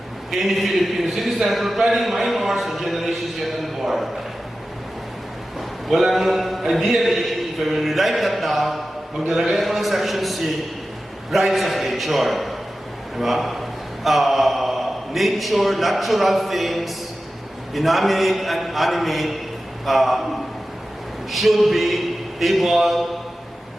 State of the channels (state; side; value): normal; both; correlation 0.94